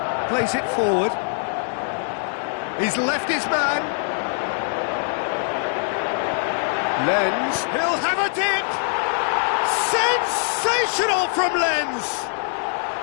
plays it forward. He's left his man. Lenz, he'll have a dip! Sensational from Lenz!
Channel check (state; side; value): silent; right; 64 dB below the other